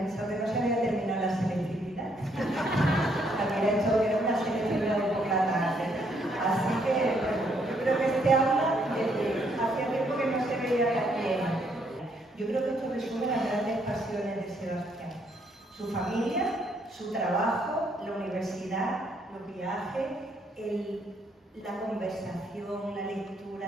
que no se había terminado la selectividad. Había hecho que era una selectividad de por la tarde. Así que, bueno, yo creo que este aula, hacía tiempo que no se veía tan llena. Yo creo que esto resume las grandes pasiones de Sebastián. Su familia, su trabajo, la universidad, los viajes, la conversación, la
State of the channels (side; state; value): both; normal; correlation 0.71